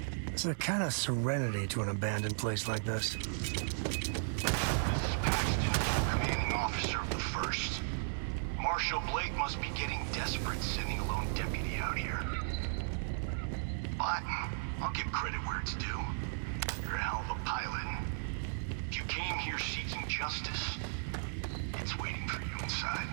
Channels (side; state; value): left; silent; digital silence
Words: There's a kind of serenity to an abandoned place like this. This is Paxton, commanding officer of the 1st. Marshal Blake must be getting desperate sending a lone deputy out here. But I'll give credit where it's due. You're a hell of a pilot. If you came here seeking justice, it's waiting for you inside.